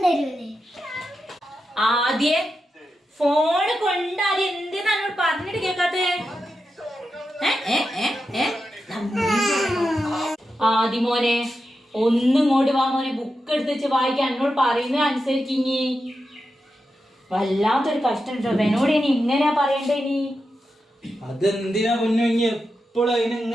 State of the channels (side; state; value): both; normal; correlation 0.89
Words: ആദ്യേ ഫോണ് കൊണ്ടാദ്യം എന്തിനാണ് പറഞ്ഞിട്ട് കേക്കാത്തേ? ആദ്യമോനെ ഒന്നും ഇങ്ങോട്ട് വാ മോനെ, ബുക്ക് എടുത്ത് വെച്ച് വായിക്കാൻ എന്നോട് പറയുന്നത് അനുസരിക്കിഞ്ഞി. വല്ലാത്തൊരു കഷ്ടം കേട്ടോ. എന്നോട് ഇനി ഇങ്ങനെയാ പറയണ്ടേ? ഇനി അതെന്തിനാ പൊന്നു എപ്പോഴും അതിനെ